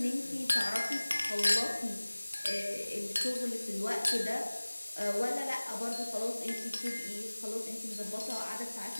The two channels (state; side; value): inverted; both; correlation -1.00